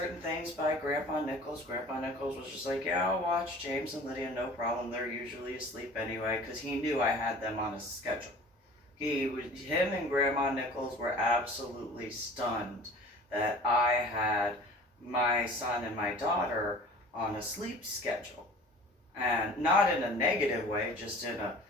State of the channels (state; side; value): normal; both; correlation 0.44